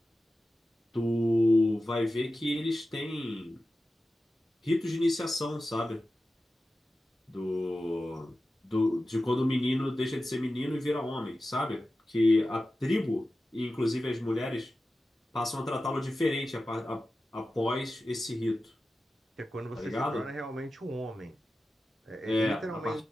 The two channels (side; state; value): both; normal; correlation 0.94